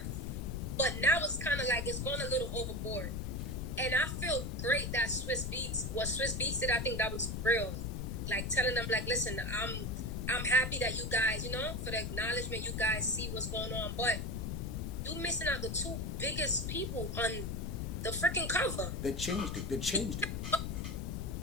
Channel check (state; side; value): noise; left; rumble, 3 dB below the sound